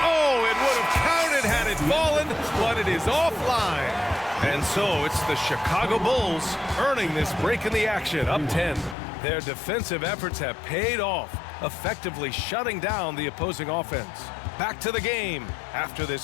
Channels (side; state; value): right; drops out; at 9.0 s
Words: Oh, it would have counted had it fallen, but it is offline. And so it's the Chicago Bulls earning this break in the action, up 10. Their defensive efforts have paid off, effectively shutting down the opposing offense. Back to the game after